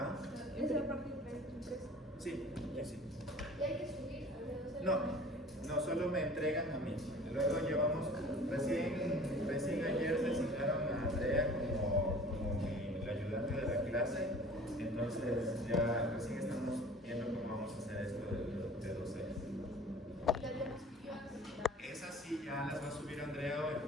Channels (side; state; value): both; normal; correlation 0.45